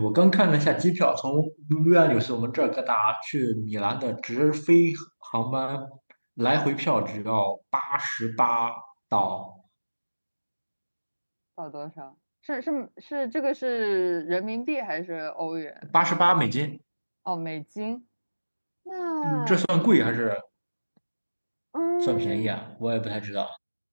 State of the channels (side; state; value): both; inverted; correlation -1.00